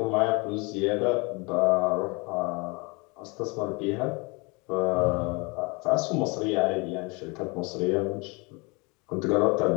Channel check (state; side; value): quieter; right; 28.5 dB